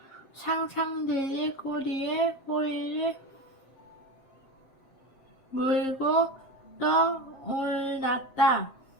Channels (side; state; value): right; late; 7.5 ms